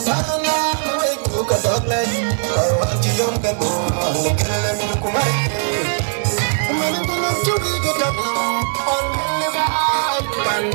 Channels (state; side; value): silent; left; digital silence